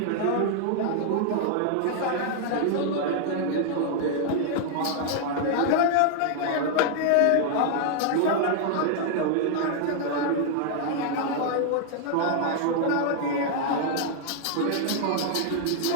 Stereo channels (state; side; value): different; both; correlation 0.00